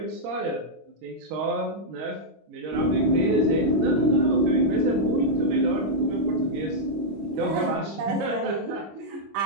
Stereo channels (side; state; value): left; late; 25 ms